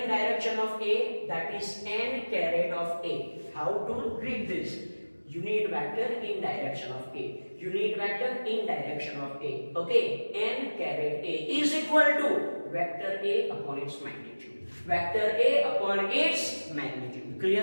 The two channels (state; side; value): inverted; both; correlation -1.00